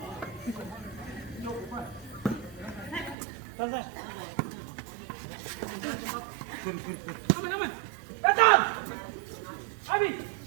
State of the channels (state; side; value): drops out; left; at 3.2 s